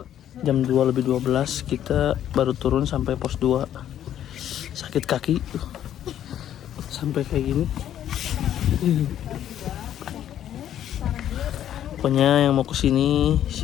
Jam 2 lebih 12 kita baru turun sampai pos 2. Sakit kaki sampai kayak gini. Pokoknya yang mau kesini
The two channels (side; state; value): right; quieter; 10.9 dB